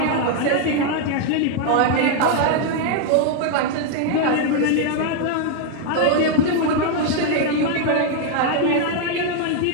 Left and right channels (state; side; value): different; both; correlation 0.00